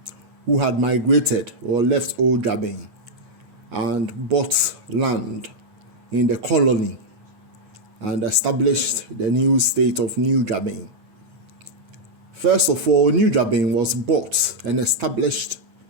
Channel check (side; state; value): left; late; 9.3 ms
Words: who had migrated or left old Juaben and bought land in the colony and established the new state of New Juaben. First of all, New Juaben was bought and established